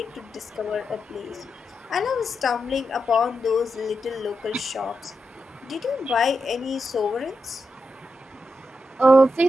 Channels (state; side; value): normal; both; correlation 0.87